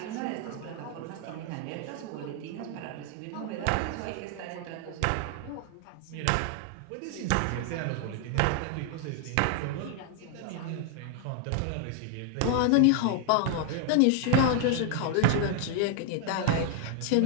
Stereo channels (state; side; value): different; both; correlation 0.00